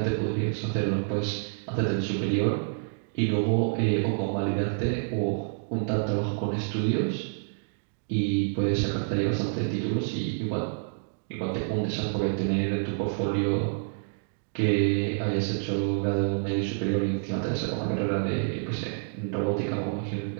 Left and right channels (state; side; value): silent; left; digital silence